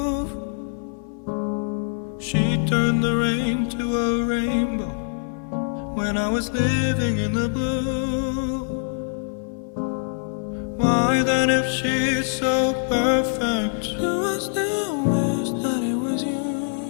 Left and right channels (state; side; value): silent; right; 59 dB below the other